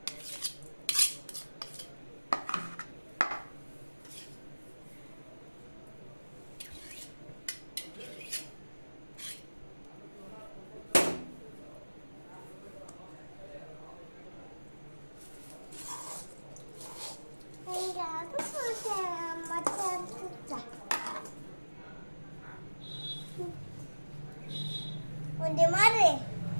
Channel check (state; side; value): inverted; both; correlation -1.00